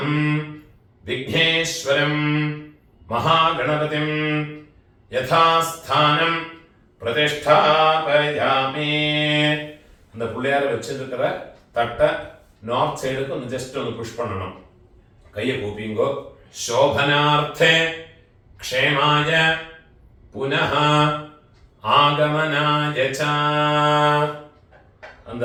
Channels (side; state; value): both; identical; correlation 1.00